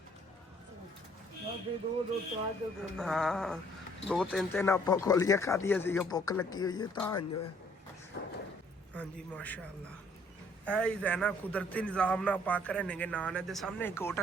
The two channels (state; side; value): normal; both; correlation 0.61